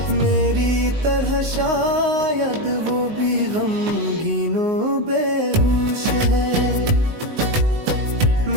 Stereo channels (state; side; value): late; left; 19 ms